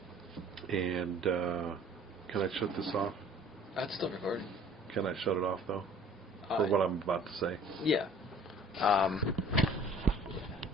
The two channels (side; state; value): both; normal; correlation 0.51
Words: And can I shut this off? That's still recording. Can I shut it off though? For what I'm about to say. Yeah.